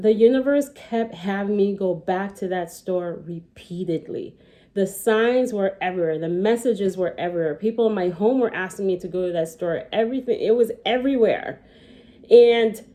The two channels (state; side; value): identical; both; correlation 1.00